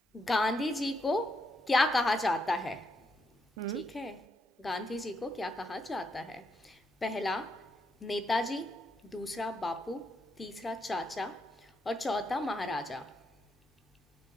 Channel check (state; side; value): normal; both; correlation 0.80